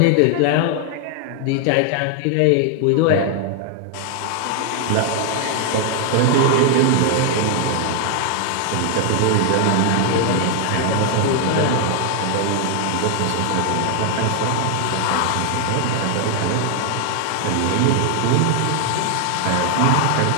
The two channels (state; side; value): different; both; correlation 0.00